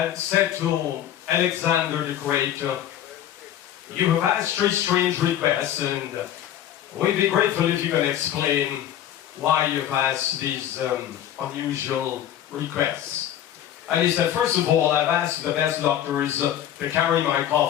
said to Alexander the Great, "You have asked 3 strange requests, and we'd be grateful if you can explain why you've asked these unusual requests." And he said, "First of all, I've asked the best doctors to carry my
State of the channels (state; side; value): quieter; right; 11.1 dB